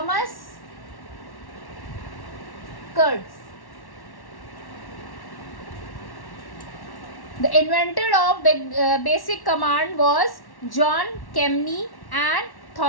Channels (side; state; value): right; late; 1.1 ms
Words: Kurtz. The inventor of basic command was John Kemeny and